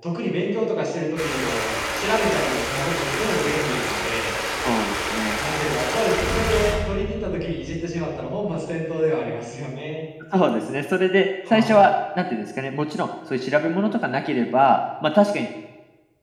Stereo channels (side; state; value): both; identical; correlation 1.00